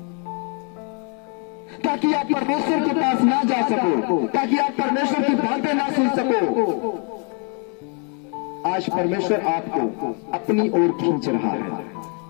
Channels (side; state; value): right; quieter; 39.0 dB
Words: ताकि आप परमेश्वर के पास ना जा सको, ताकि आप परमेश्वर की बातें ना सुन सको। आज परमेश्वर आपको अपनी ओर खींच रहा है।